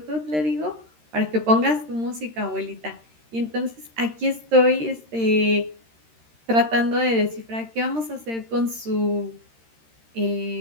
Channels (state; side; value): late; left; 13 ms